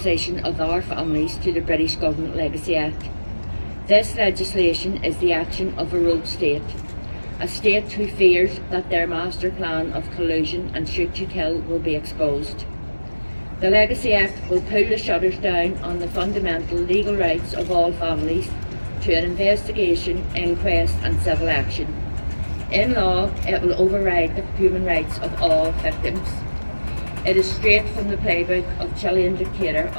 of our families to the British Government Legacy Act. This legislation is the action of a rogue state, a state who fears that their master plan of collusion and shoot to kill will be exposed. The Legacy Act will pull the shutters down on the fundamental legal rights of all families to an investigation, inquest and civil action. In law, it will override the human rights of all victims. It is straight from the playbook of Chilean dictator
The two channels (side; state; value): both; inverted; correlation -1.00